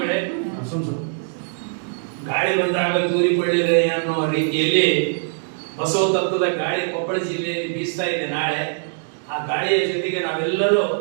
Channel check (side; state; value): left; silent; digital silence